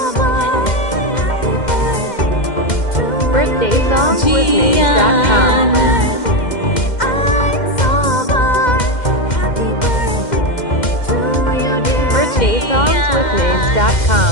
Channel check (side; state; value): right; late; 2.1 ms